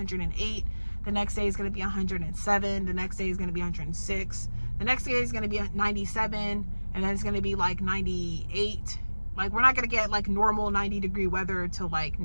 The next day is going to be 107. The next day is going to be 106. The next day is going to be 97. And then it's going to be like 98. Like, we're not going to get like normal 90-degree weather till like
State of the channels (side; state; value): both; inverted; correlation -1.00